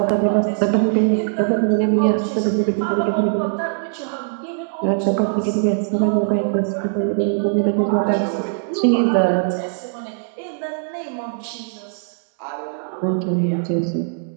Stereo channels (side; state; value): left; silent; digital silence